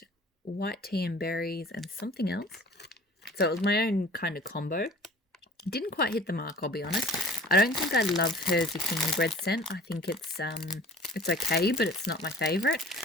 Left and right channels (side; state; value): both; normal; correlation 0.46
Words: white tea and berries, and something else. So it was my own kind of combo. Didn't quite hit the mark, I'll be honest. I don't think I love her zucchini bread scent. I think it's okay, but it's not my favorite.